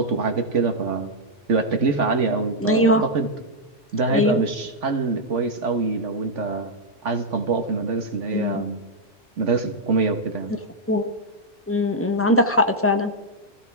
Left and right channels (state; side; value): normal; both; correlation -0.04